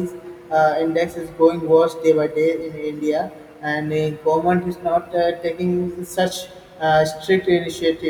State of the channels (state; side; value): identical; both; correlation 1.00